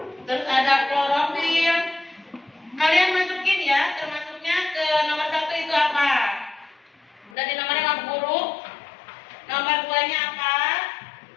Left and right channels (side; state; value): right; drops out; at 7.4 s